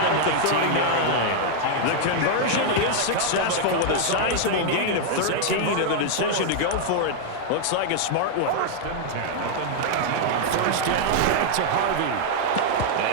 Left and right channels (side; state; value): both; different; correlation 0.00